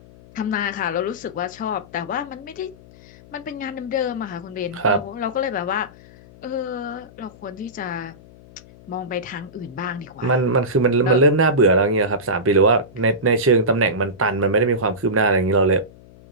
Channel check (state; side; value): noise; left; hum, 23 dB below the sound